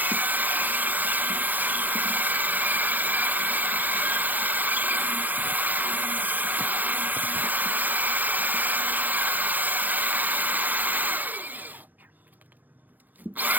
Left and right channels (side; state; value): left; late; 0.084 ms